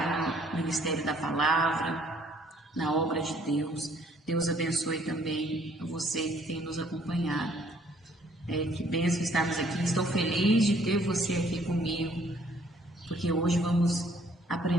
no Ministério da Palavra, na obra de Deus. Deus abençoe também a você que tem nos acompanhado. Que bênção estarmos aqui. Estou feliz de ter você aqui comigo, porque hoje vamos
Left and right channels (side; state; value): both; normal; correlation 0.62